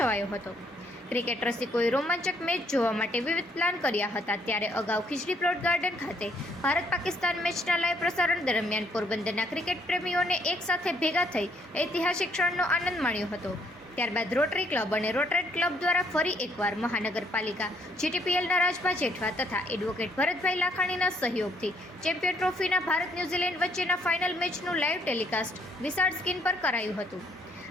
હતો. ક્રિકેટ રસિકોએ રોમાંચક મેચ જોવા માટે વિવિધ પ્લાન કર્યા હતા. ત્યારે અગાઉ ખીજડી પ્લોટ ગાર્ડન ખાતે ભારત પાકિસ્તાન મેચના લાઈવ પ્રસારણ દરમિયાન પોરબંદરના ક્રિકેટ પ્રેમીઓને એક સાથે ભેગા થઈ ઐતિહાસિક ક્ષણનો આનંદ માણ્યો હતો. ત્યારબાદ રોટરી ક્લબ અને રોટરેટ ક્લબ દ્વારા ફરી એકવાર મહાનગરપાલિકા, જીટીપીએલના રાજભા જેઠવા તથા એડવોકેટ ભરતભાઈ લાખાણીના સહયોગથી ચેમ્પિયન ટ્રોફીના ભારત ન્યૂઝીલેન્ડ વચ્ચેના ફાઇનલ મેચનું લાઈવ ટેલિકાસ્ટ વિશાળ સ્ક્રીન પર કરાયું હતું.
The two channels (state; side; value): normal; both; correlation 0.68